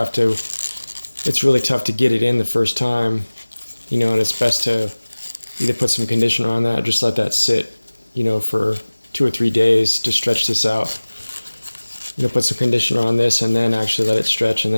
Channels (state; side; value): inverted; both; correlation -1.00